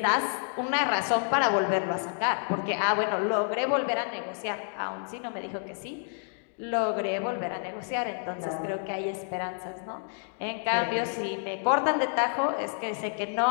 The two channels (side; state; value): right; silent; 59 dB below the other